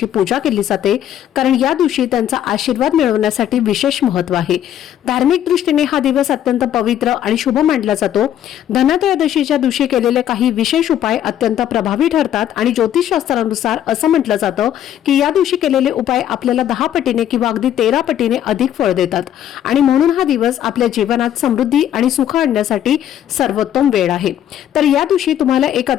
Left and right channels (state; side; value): quieter; right; 10.9 dB